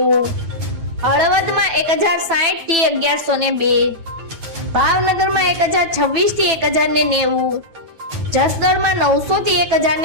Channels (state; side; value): late; left; 9.2 ms